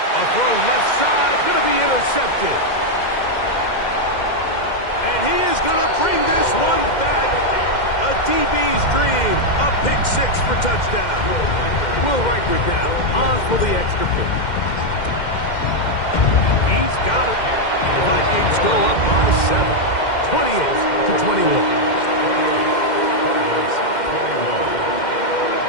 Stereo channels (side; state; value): right; late; 2.1 ms